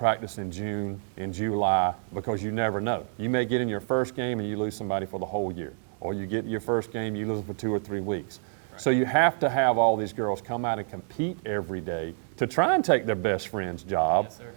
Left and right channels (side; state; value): left; silent; 59 dB below the other